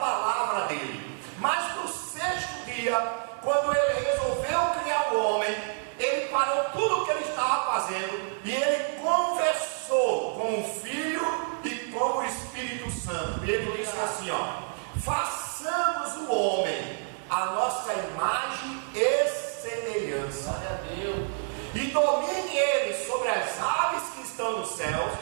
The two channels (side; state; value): left; silent; 59 dB below the other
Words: dele. Mas no 6º dia, quando Ele resolveu criar o homem, Ele parou tudo o que Ele estava fazendo e Ele conversou com o Filho e com o Espírito Santo. E Ele disse assim: façamos o homem a nossa imagem e semelhança. Glória a Deus. E domine Ele sobre as aves que estão nos céus,